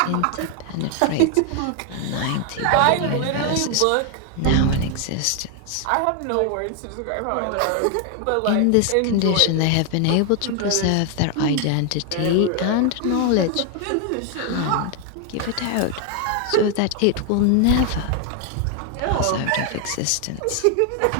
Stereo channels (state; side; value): different; both; correlation 0.01